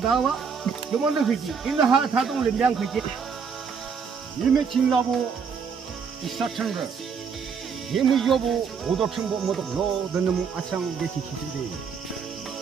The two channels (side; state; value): left; quieter; 6.1 dB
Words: 요거는 그지. 인하 사동을 량 그지. 이미 진라고 이사천거 예무 여부 오덕천보 모덕 너드는 아창 게시 기준대